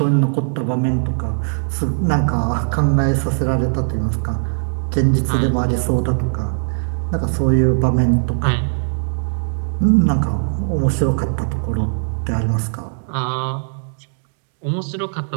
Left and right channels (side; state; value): left; silent; digital silence